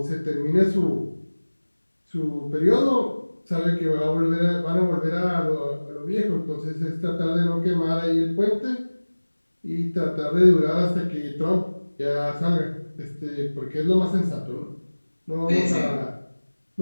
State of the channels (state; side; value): inverted; both; correlation -1.00